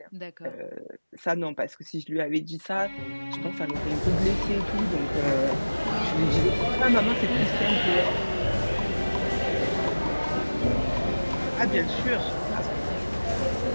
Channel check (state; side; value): inverted; both; correlation -1.00